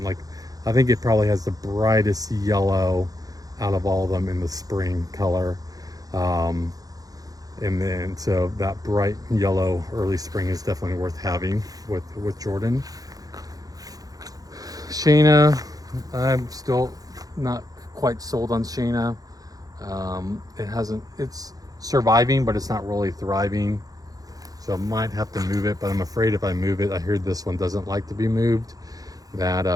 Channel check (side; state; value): left; late; 0.18 ms